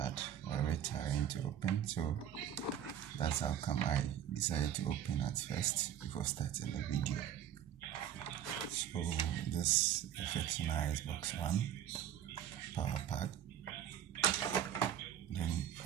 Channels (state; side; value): quieter; left; 10.2 dB